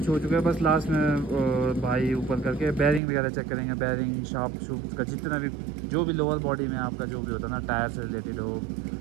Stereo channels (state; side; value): drops out; left; at 3.0 s